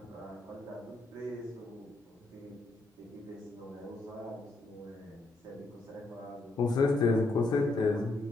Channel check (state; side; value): quieter; right; 3.0 dB